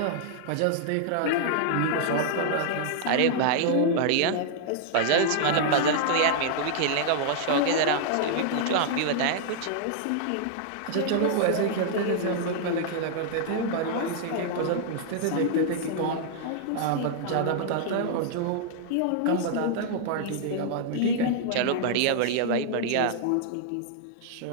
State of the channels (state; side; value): different; both; correlation -0.01